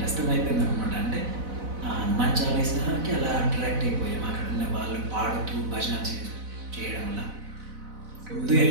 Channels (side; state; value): left; late; 4.0 ms